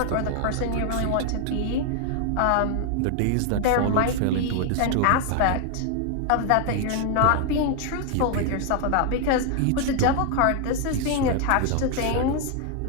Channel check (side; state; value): both; different; correlation 0.00